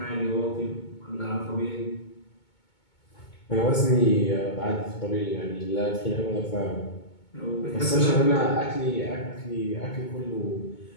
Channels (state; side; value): late; right; 2.2 ms